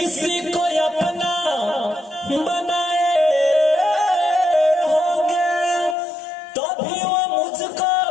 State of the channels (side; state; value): right; drops out; at 6.0 s